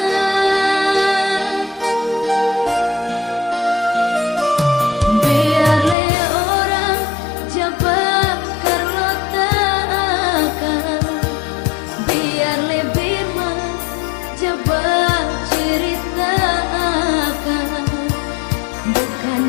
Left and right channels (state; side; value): drops out; right; at 6.0 s